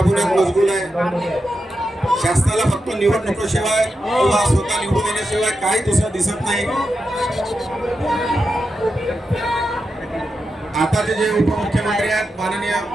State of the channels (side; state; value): both; normal; correlation 0.88